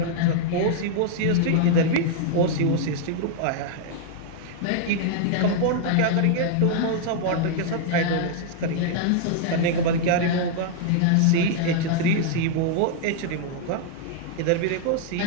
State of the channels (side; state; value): both; different; correlation 0.00